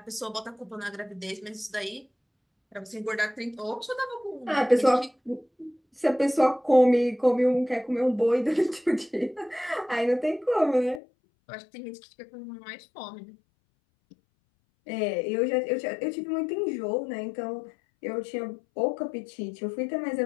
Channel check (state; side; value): drops out; right; at 11.0 s